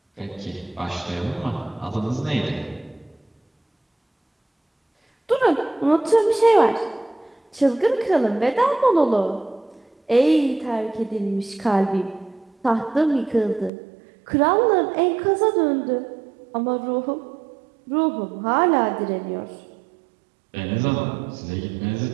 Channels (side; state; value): left; drops out; at 13.7 s